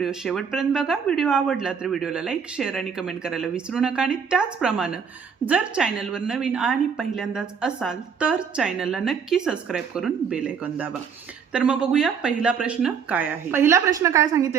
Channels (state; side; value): quieter; left; 6.6 dB